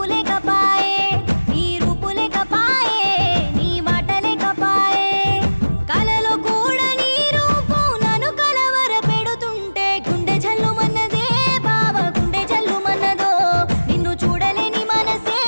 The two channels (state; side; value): inverted; both; correlation -1.00